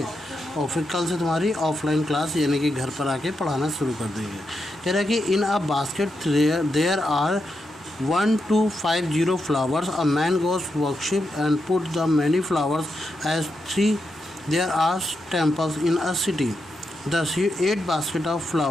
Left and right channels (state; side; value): normal; both; correlation 0.85